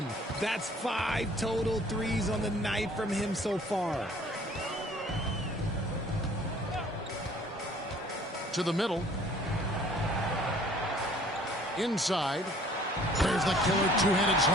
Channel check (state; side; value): normal; both; correlation 0.55